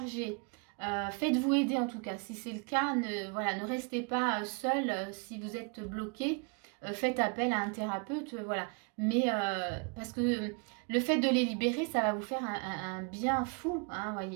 Faites-vous aider en tout cas. Si c'est le cas, ne restez pas seul si vous êtes bloqué. Faites appel à un thérapeute, voilà. Mais parce que le fait de les libérer, ça va vous faire un bien fou, hein,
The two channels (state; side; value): quieter; left; 35.3 dB